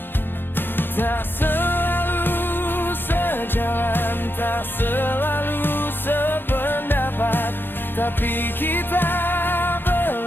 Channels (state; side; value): late; right; 0.099 ms